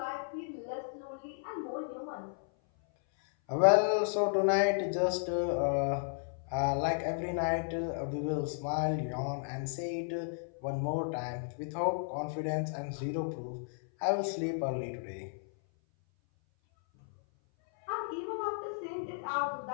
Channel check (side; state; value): right; silent; 55 dB below the other